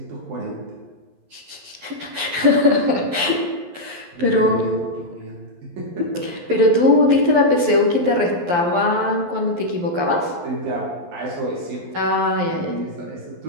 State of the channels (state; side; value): late; left; 11 ms